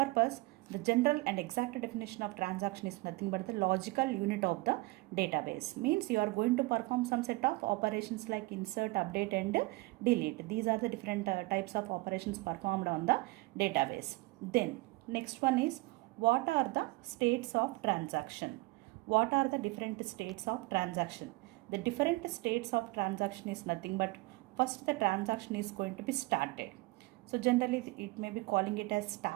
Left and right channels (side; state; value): left; quieter; 23.3 dB